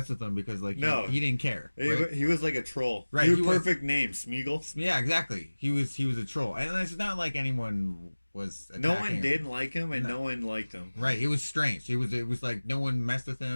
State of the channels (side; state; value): both; inverted; correlation -1.00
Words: with him because he didn't care. Right? He was like a troll. Right. He was perfect name, Smeagol. Yeah, exactly. He was a troll, and it's not like anyone was attacking no one him. didn't like him, and no one liked him. Right. It was strange. It was like no one messed with